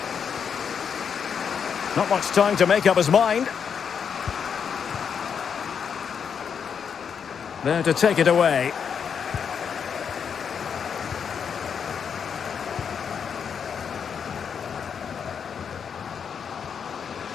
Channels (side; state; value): right; quieter; 7.0 dB